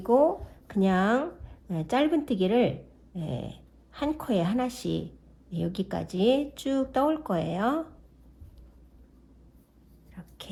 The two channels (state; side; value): identical; both; correlation 1.00